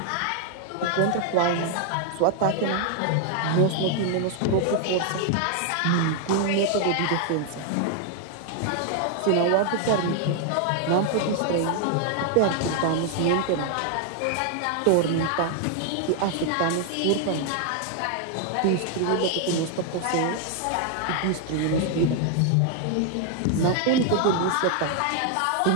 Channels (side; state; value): both; different; correlation 0.00